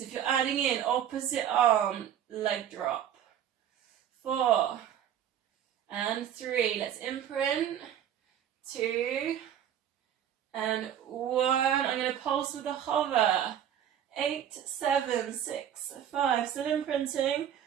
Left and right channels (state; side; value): quieter; left; 9.9 dB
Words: If you're adding in opposite arm, leg drop. 4 and 3. Let's imprint. 2 and 1. I'm going to pulse with a hover. 8, 7, 6, 5. Still imprinting.